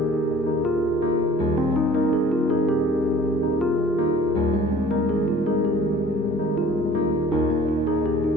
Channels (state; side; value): normal; both; correlation 0.49